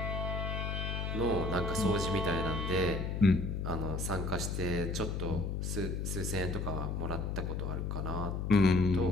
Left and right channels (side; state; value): left; noise; hum, 2 dB below the sound